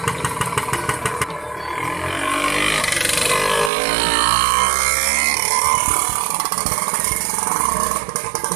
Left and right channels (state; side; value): drops out; left; at 3.7 s